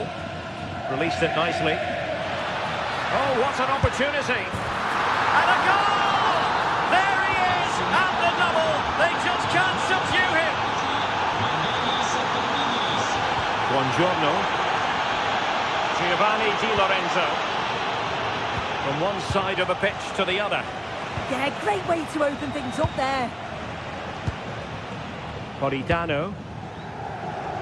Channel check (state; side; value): identical; both; correlation 1.00